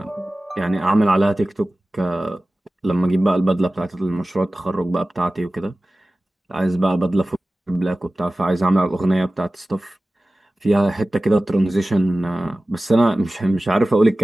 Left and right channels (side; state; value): both; normal; correlation 0.97